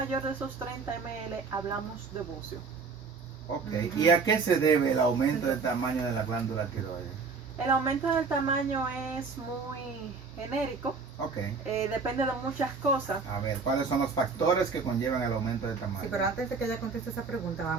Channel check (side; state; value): left; quieter; 4.8 dB